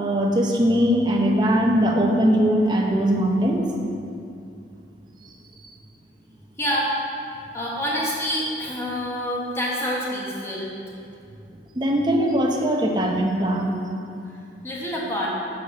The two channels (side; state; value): both; normal; correlation 0.64